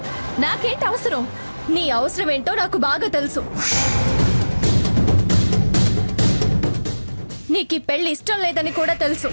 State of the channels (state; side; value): inverted; both; correlation -1.00